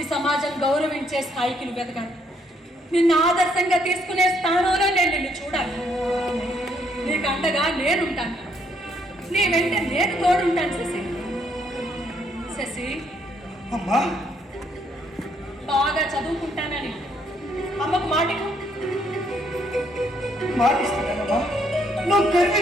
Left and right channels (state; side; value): normal; both; correlation 0.70